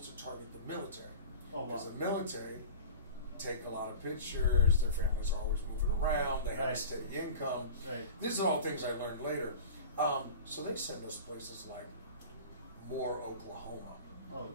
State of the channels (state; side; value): inverted; both; correlation -0.36